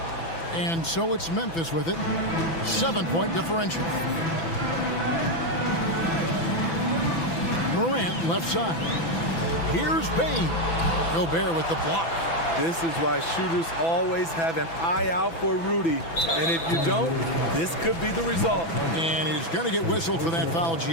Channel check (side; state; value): right; late; 6.0 ms